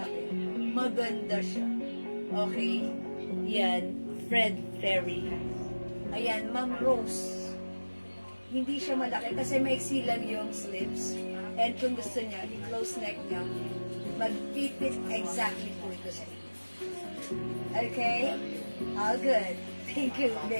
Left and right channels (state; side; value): inverted; both; correlation -1.00